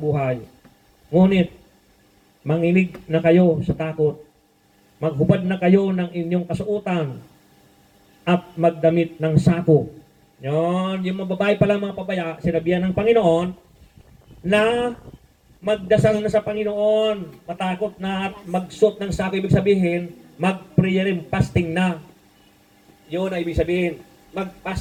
Ngunit, manginig na kayo sa takot. Maghubad na kayo ng inyong kasuotan. at magdamit ng sako. Yon, yung mga babae pala mga pabaya, sinabihan ng Panginoon na magdasal na sa Panginoon, matakot na at magsuot ng sako, ibig sabihin, mag-prayer and fasting na. Yun ang ibig sabihin,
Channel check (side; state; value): both; identical; correlation 1.00